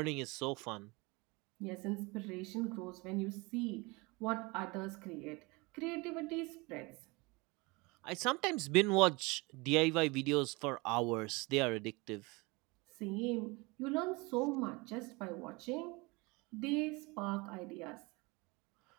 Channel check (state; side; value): quieter; left; 25.7 dB